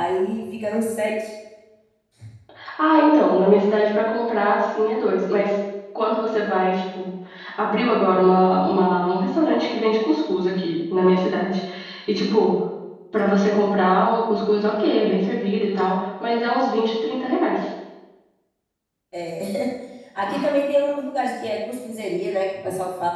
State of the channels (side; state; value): both; identical; correlation 1.00